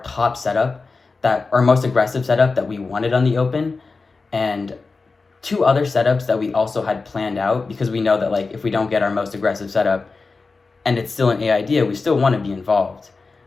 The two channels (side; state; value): right; quieter; 4.1 dB